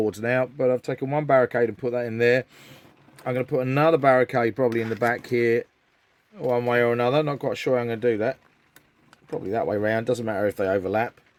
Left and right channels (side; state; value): both; identical; correlation 1.00